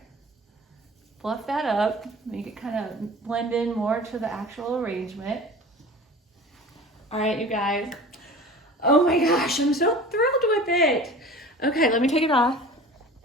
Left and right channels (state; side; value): normal; both; correlation 0.40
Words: Fluff that up, make it kind of blend in more to the actual arrangement. All right, you guys. Oh my gosh, I'm so thrilled with it. Okay, let me take it off.